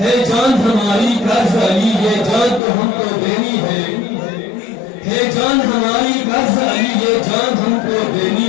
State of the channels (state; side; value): drops out; right; at 2.6 s